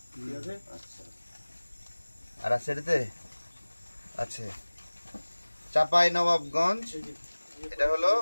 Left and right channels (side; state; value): both; inverted; correlation -1.00